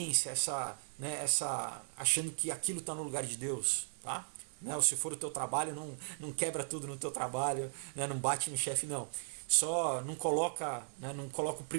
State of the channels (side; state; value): left; silent; digital silence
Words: achando que aquilo está no lugar de Deus, tá? Né? Ou se for o teu trabalho, não quebra tudo no teu trabalho, né? Não bate no chefe, não. Só não coloca, né, não coloca o